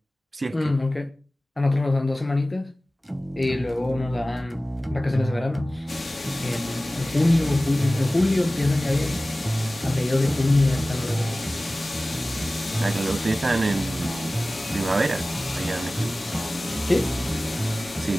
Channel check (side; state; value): both; normal; correlation 0.97